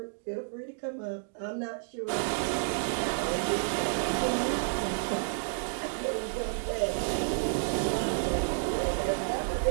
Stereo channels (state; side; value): silent; left; digital silence